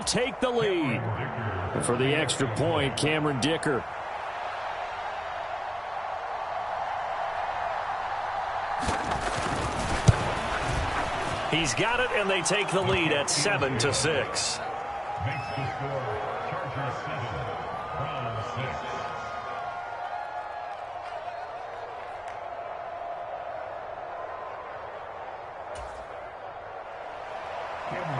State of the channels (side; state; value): both; identical; correlation 1.00